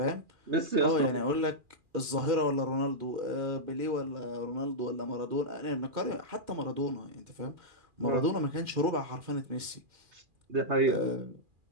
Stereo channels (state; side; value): late; left; 2.4 ms